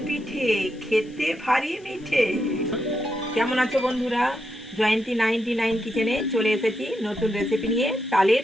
পিঠে খেতে ভারী মিঠে। কেমন আছো বন্ধুরা? জয়ন্তী 99 কিচেনে চলে এসেছি নতুন রেসিপি নিয়ে। তালের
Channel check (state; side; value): noise; left; hiss, 29 dB below the sound